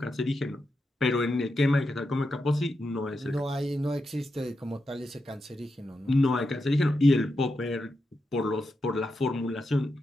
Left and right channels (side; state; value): both; normal; correlation 0.87